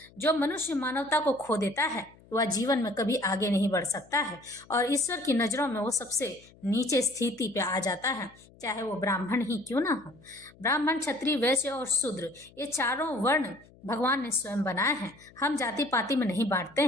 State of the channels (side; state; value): left; noise; hum, 26 dB below the sound